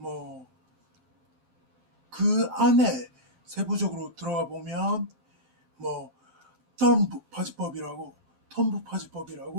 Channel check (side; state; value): left; late; 12 ms